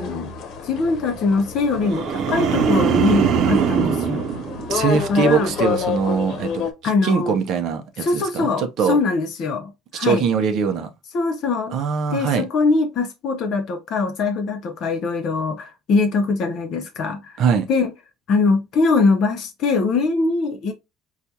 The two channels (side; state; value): both; normal; correlation 0.53